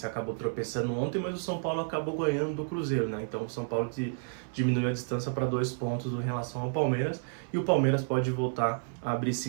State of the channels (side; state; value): left; silent; 57 dB below the other